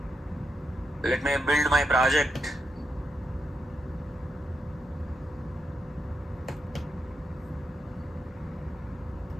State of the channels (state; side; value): normal; both; correlation 0.83